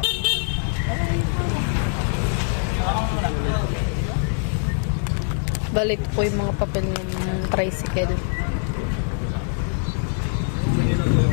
Balit po yung mga papel ng tricycle.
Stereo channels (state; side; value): silent; right; 63 dB below the other